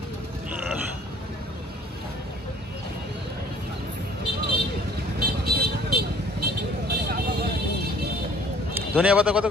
ধনিয়া পাতা কত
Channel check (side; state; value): both; normal; correlation 0.55